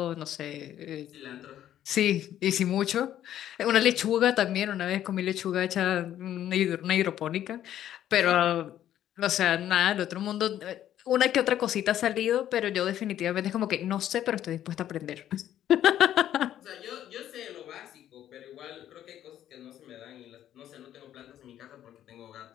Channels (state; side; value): quieter; right; 11.5 dB